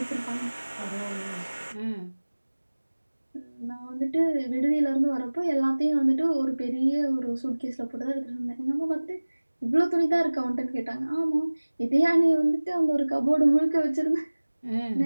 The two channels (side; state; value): both; inverted; correlation -1.00